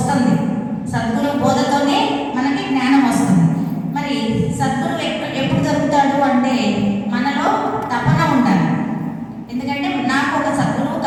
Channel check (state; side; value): identical; both; correlation 1.00